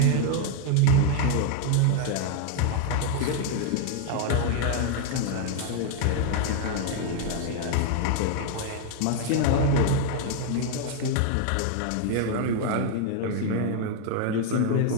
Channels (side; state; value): both; different; correlation 0.00